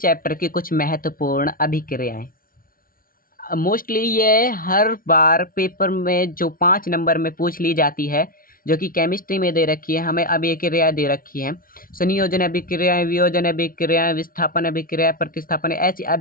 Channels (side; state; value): right; late; 0.42 ms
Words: की कुछ महत्वपूर्ण अभिक्रियाएं। मोस्टली ये हर बार पेपर में जो 5 नंबर में पूछ ली जाती है, जो कि केमिस्ट्री में दे रखी है। हमें अभिक्रिया दे रखी है, संयोजन अभिक्रियाएं, वियोजन अभिक्रियाएं, विस्थापन अभिक्रिया, प्रतिस्थापन, ऐसी